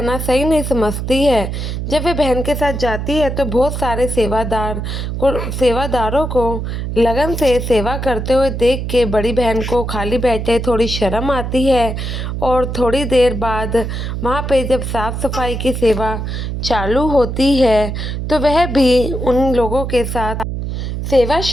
सही नहीं समझती है। जब वे बहन के साथ जाती है तो बहुत सारे सेवादारों को लगन से सेवा करते हुए देख के बड़ी बहन को खाली बैठे थोड़ी शर्म आती है और थोड़ी देर बाद वहाँ पे जब साफ़ सफाई की सेवा चालू होती है तो वह भी उन लोगों के साथ सेवा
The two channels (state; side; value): noise; right; hum, 4 dB below the sound